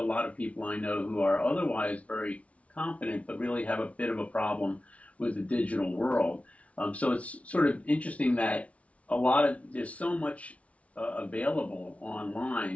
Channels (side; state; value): right; late; 0.065 ms